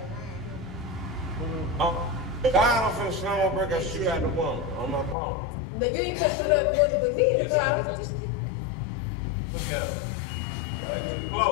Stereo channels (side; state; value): right; drops out; at 5.2 s